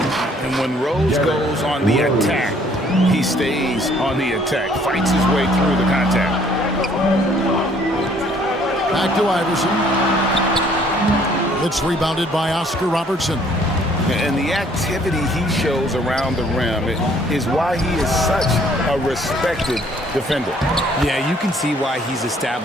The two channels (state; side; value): normal; both; correlation 0.61